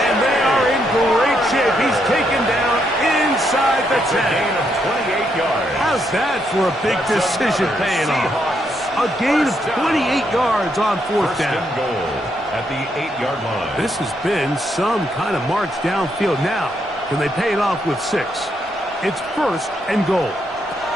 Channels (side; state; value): both; normal; correlation 0.77